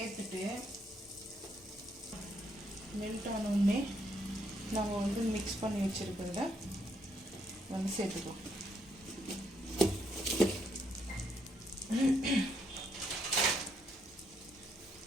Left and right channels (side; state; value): both; normal; correlation 0.74